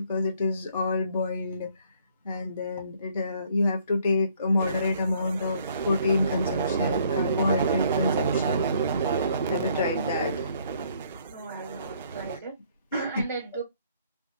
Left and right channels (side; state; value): both; inverted; correlation -0.63